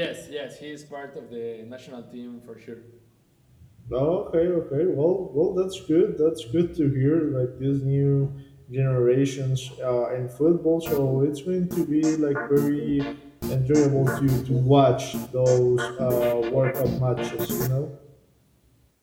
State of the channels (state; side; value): identical; both; correlation 1.00